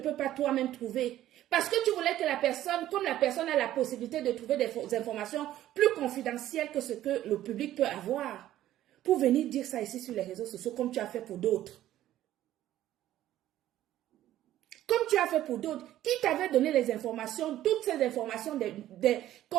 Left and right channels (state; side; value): quieter; left; 13.3 dB